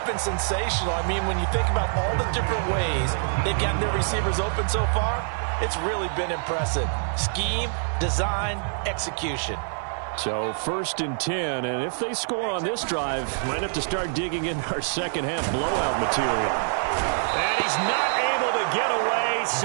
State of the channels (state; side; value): silent; left; 61 dB below the other